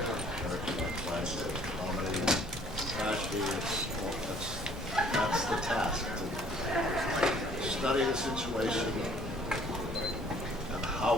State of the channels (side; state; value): both; normal; correlation 0.57